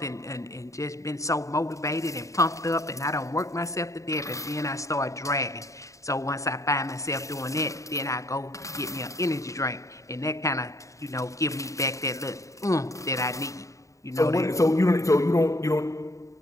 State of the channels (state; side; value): late; right; 0.15 ms